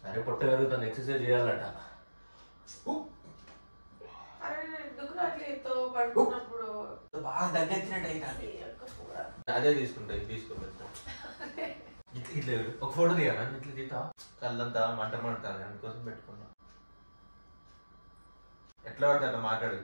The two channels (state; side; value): inverted; both; correlation -1.00